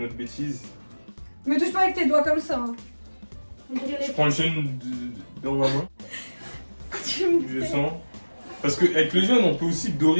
bêtise. Me touche pas avec tes doigts comme ça. Hein. Je prends le jaune dans ma main. Je sens. Parce qu'avec le jaune, on peut aussi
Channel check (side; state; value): both; inverted; correlation -1.00